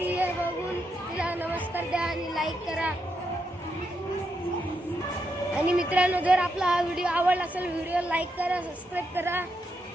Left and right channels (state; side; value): normal; both; correlation 0.82